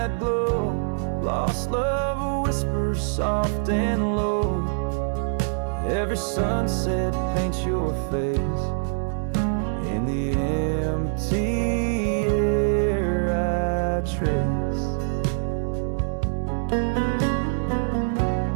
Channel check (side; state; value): left; silent; digital silence